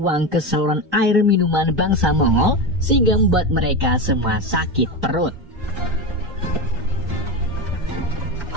ke saluran air minuman bangsa Mongol sehingga membuat mereka semua sakit perut.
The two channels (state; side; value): normal; both; correlation 0.15